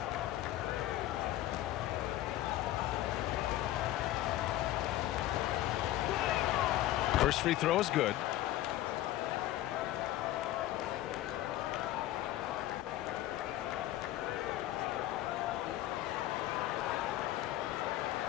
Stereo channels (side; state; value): right; quieter; 14.6 dB